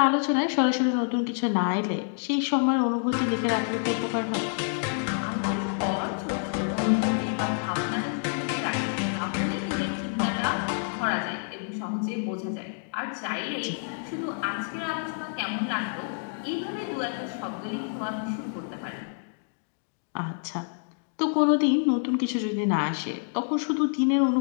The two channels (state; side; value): silent; right; 60 dB below the other